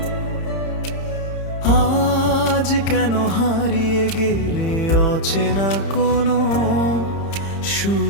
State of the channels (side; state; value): right; late; 30 ms